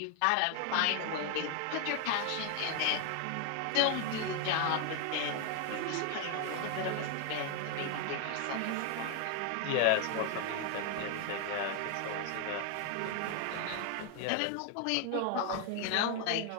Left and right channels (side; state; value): both; different; correlation 0.00